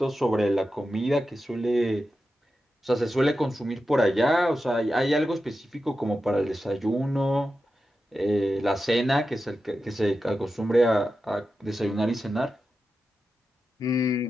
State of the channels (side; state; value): both; normal; correlation 0.91